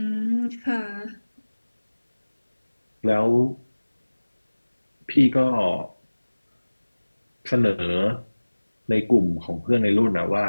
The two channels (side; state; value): both; inverted; correlation -1.00